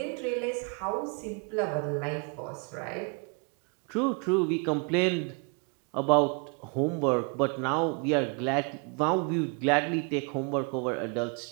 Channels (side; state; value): left; quieter; 35.2 dB